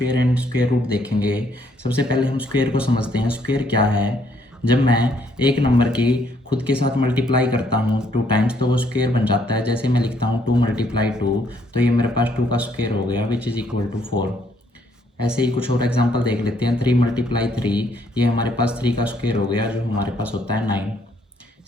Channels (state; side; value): normal; both; correlation 0.68